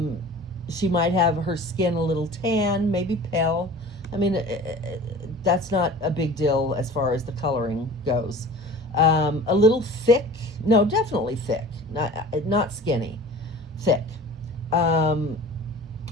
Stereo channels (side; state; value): both; normal; correlation 0.40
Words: She might have her skin a little tan, maybe pale. I mean, that's not a big deal as far as the coloring goes. A little thick. No, definitely thick. Not skinny. Thick.